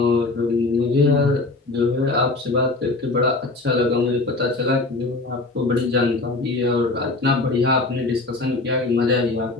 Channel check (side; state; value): right; quieter; 3.3 dB